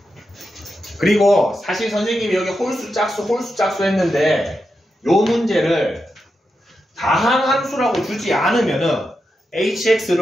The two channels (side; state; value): both; normal; correlation 0.87